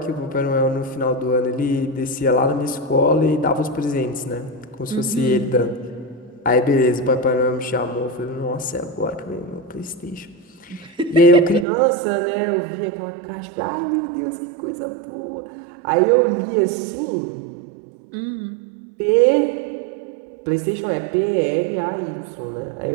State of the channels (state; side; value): drops out; left; at 11.7 s